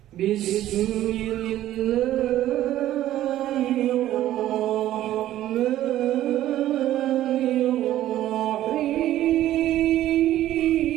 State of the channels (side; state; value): left; quieter; 13.4 dB